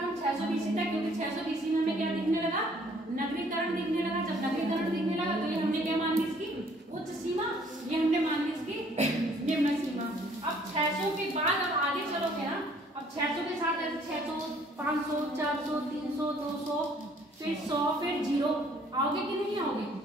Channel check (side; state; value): both; normal; correlation 0.60